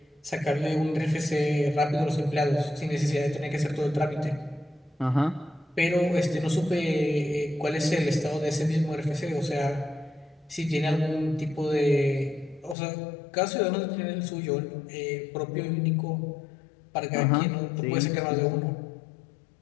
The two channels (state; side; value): drops out; right; at 12.8 s